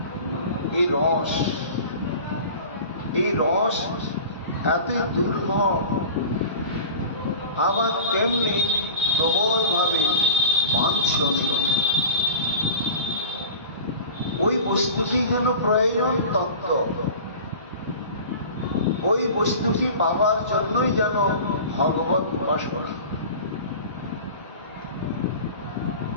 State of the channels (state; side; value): inverted; both; correlation -0.37